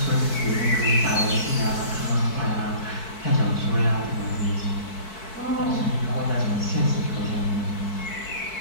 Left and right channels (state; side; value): late; right; 4.6 ms